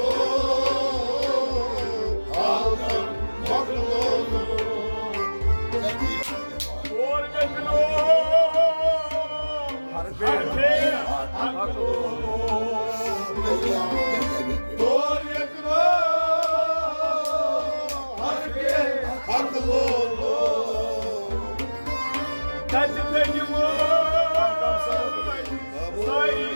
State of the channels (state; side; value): inverted; both; correlation -1.00